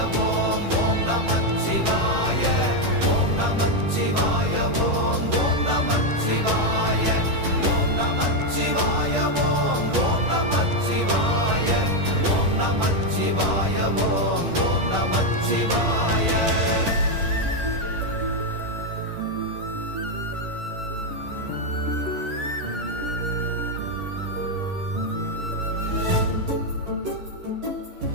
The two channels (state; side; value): late; left; 10 ms